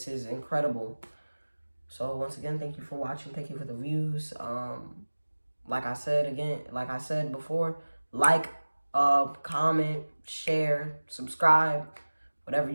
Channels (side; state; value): both; inverted; correlation -1.00